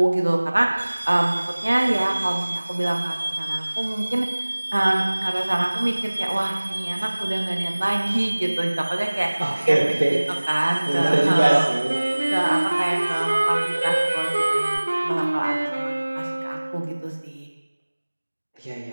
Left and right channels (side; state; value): both; inverted; correlation -1.00